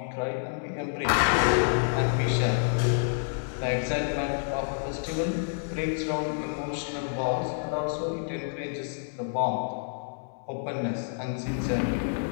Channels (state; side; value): silent; right; digital silence